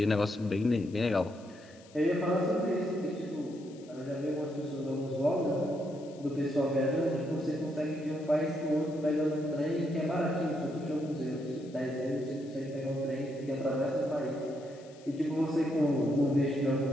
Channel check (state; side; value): noise; left; hiss, 26 dB below the sound